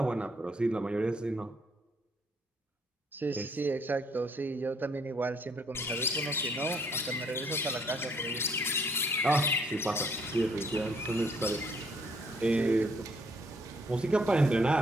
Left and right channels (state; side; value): normal; both; correlation 0.66